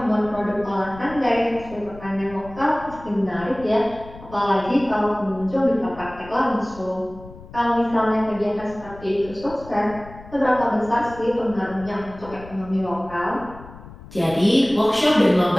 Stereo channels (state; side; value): noise; left; rumble, 18 dB below the sound